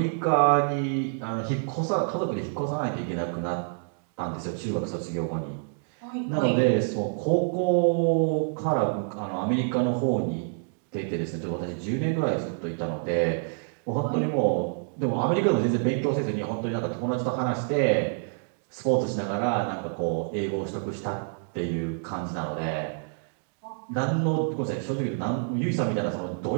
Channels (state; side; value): silent; left; digital silence